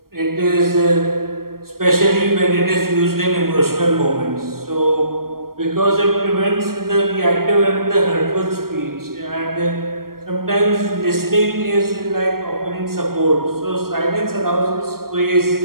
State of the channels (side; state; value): left; late; 0.93 ms